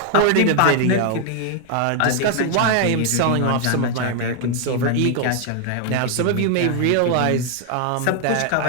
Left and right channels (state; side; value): different; both; correlation 0.00